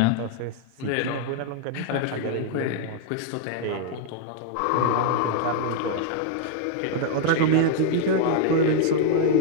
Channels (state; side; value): different; both; correlation -0.01